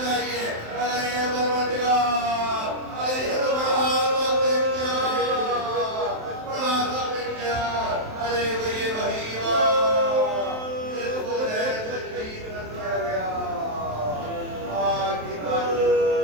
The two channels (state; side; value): late; left; 27 ms